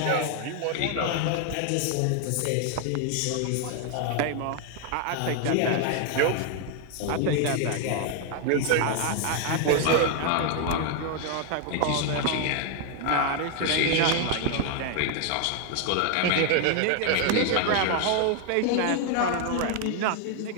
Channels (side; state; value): both; different; correlation 0.00